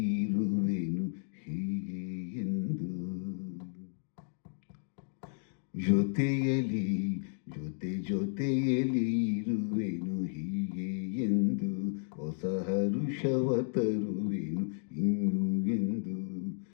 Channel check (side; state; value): right; silent; 56 dB below the other